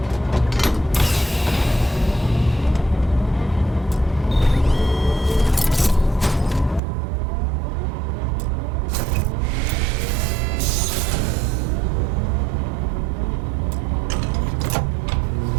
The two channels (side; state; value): left; drops out; at 6.8 s